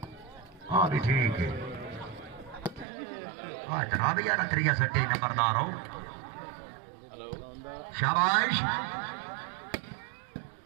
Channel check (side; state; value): left; drops out; at 2.9 s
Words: हाँ भी ठीक है हाँ जनाब यार त्रिया सट्टी नंबरदार हो शाबाश